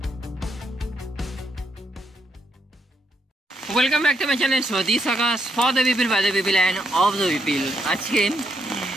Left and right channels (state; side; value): normal; both; correlation 0.78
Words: Welcome back to my channel Swadesh Akash, for the people by the people and of the people. আজকে